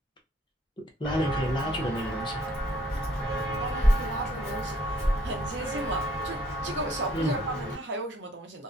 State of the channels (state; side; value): normal; both; correlation 0.64